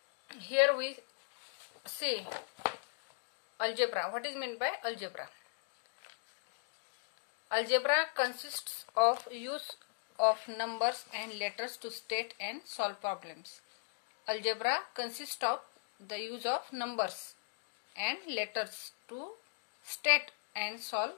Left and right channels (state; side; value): silent; right; digital silence